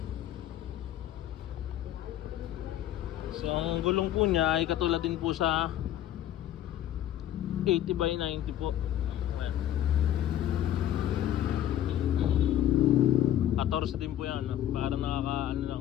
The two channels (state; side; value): quieter; right; 11.8 dB